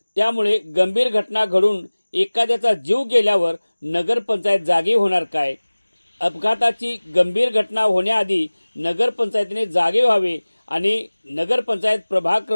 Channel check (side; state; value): both; inverted; correlation -1.00